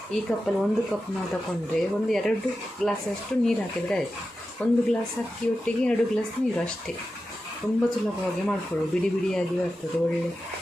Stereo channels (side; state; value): both; normal; correlation 0.92